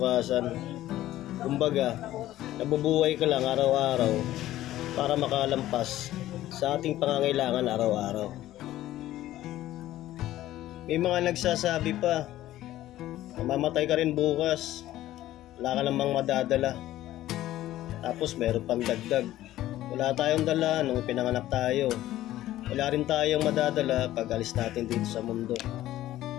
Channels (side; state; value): right; quieter; 14.4 dB